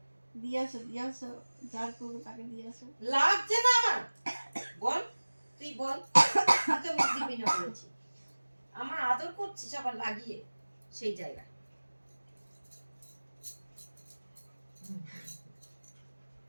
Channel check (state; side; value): inverted; both; correlation -1.00